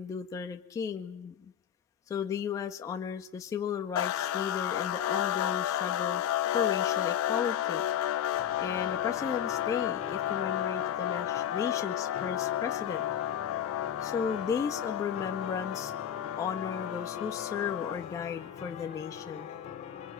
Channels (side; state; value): right; quieter; 9.2 dB